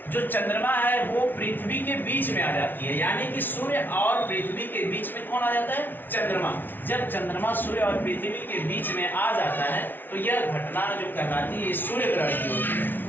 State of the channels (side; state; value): right; late; 0.093 ms